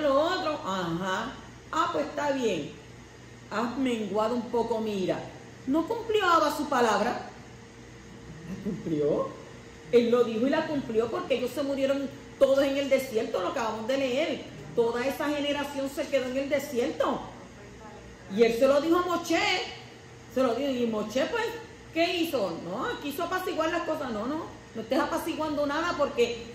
otro. Ajá, pues está bien. Has menguado un poco, mira. ¿No cumplió Abba su palabra? ¿La cumplió? Él lo dijo y la cumplió, porque ellos se murieron todos en el desierto, lo acabamos de leer. Toda esa generación se quedó en el desierto. Y él se lo dijo a Moshe. Se lo dijo. Y Moshe, pues, ¿qué hizo? No, quiso apaciguar las cosas. No estés apaciguando nada porque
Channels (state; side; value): identical; both; correlation 1.00